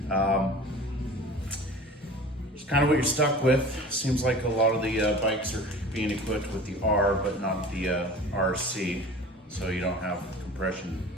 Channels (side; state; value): both; normal; correlation 0.40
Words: It's kind of what you're stuck with. Seems like a lot of the bikes are being equipped with the R, but not the RC, so you don't have compression